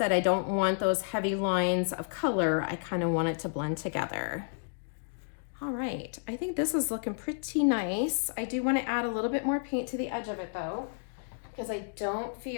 I don't want those heavy lines of color. I kind of want it to blend together. All right, I think this is looking pretty nice. I do want to add a little bit more paint to the edge of it though, because I don't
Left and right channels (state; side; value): silent; right; digital silence